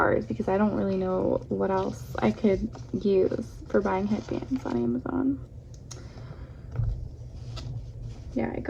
because I don't really know what else I could use for buying headbands on Amazon. Yeah, I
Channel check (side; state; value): both; identical; correlation 1.00